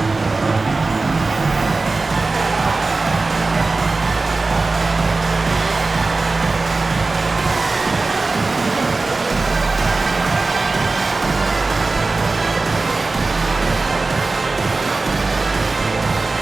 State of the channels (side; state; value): left; quieter; 3.6 dB